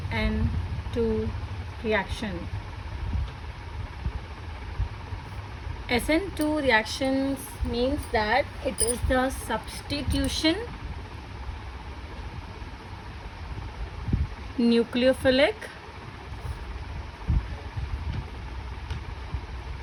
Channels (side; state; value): both; identical; correlation 1.00